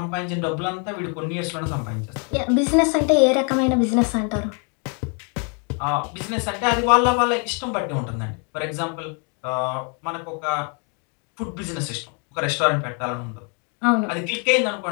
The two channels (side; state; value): right; quieter; 37.7 dB